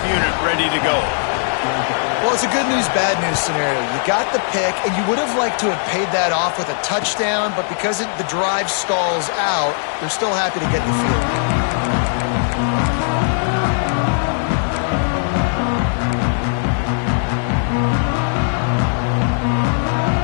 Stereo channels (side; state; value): right; silent; digital silence